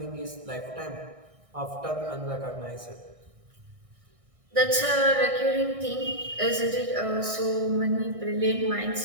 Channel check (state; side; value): late; left; 1.6 ms